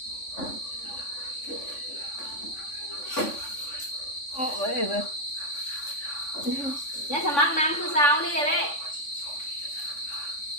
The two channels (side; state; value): right; late; 3.5 ms